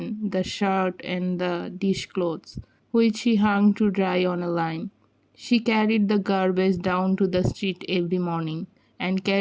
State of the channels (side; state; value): both; identical; correlation 1.00